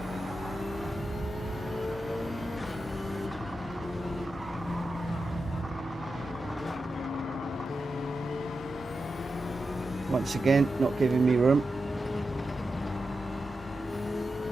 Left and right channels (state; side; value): normal; both; correlation 0.90